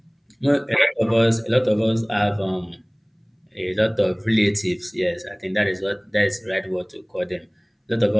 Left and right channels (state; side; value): identical; both; correlation 1.00